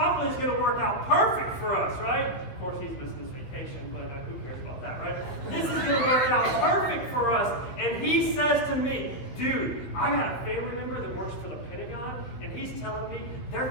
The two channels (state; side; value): late; right; 16 ms